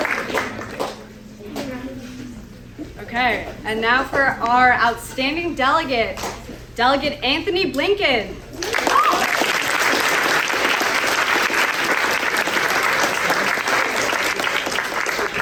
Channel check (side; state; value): both; identical; correlation 1.00